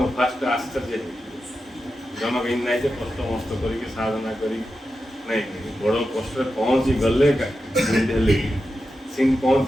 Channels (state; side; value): normal; both; correlation 0.90